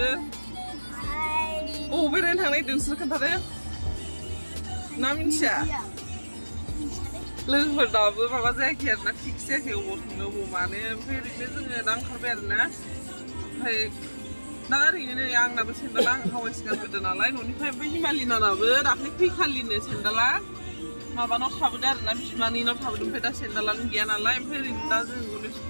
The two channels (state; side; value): inverted; both; correlation -1.00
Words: अबाव बेरायनो थांनो नागिरदों नोंसोर खोन्थादो ना मिन्थिया लोगोफोर दाबो माबा जायाखै आरोना फिक्स जायाखै अबाव थांनो अबाव मानो ओमफ्राय ओरैनो जोङो दा ओंखारबाय आरोना ओमफ्राय दा ओरैनो नै आंनाबो सेन्देला आं हावाइसो गानबोदों नालाय न'निफ्राय ओमफ्राय हिमालिनानाबो दाख्लै फैखालिनो सेन्देला माबानाव थाबोदों आरोना बिमानैनाव थाबोदों ओमफ्राय दा सेन्देलानो गैया नालाय ओमफ्राय ओरैनो दा जों